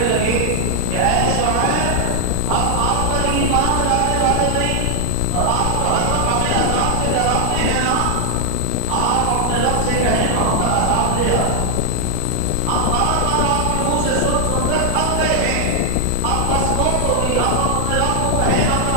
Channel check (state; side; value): different; both; correlation 0.00